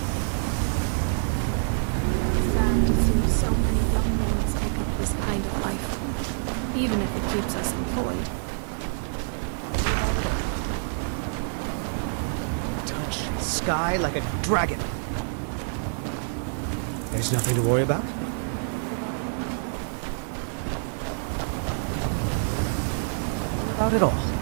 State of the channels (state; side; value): silent; left; 55 dB below the other